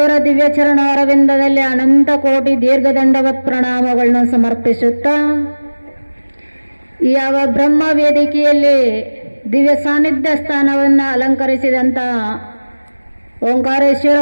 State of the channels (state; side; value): inverted; both; correlation -1.00